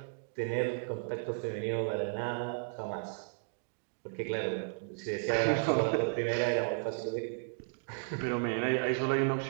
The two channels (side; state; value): left; silent; digital silence